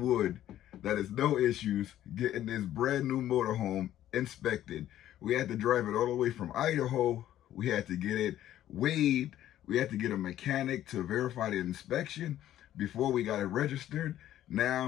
wood that it's no issues getting this brand new motorhome inspected. We had to drive it all the way from Idaho. We had to get it weighed. We had to get a mechanic to verify the inspection before we got it registered.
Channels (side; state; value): right; quieter; 12.5 dB